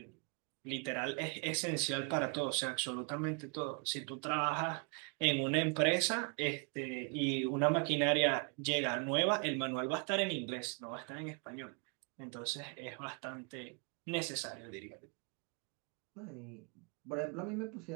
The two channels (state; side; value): quieter; left; 36.5 dB